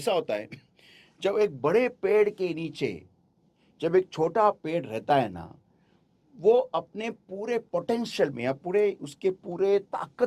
होता है, जब एक बड़े पेड़ के नीचे जब एक छोटा पेड़ रहता है ना, वो अपने पूरे पोटेंशियल में या पूरे उसके पूरे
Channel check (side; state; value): both; identical; correlation 1.00